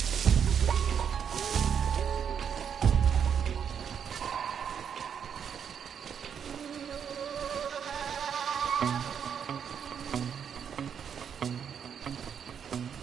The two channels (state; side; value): quieter; left; 7.7 dB